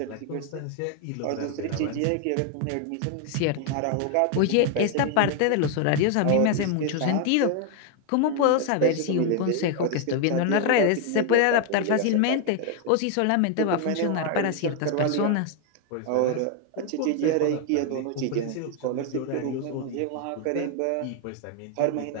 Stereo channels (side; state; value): both; different; correlation 0.01